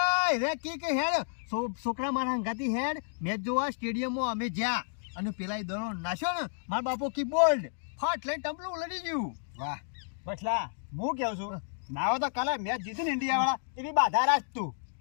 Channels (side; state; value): right; silent; digital silence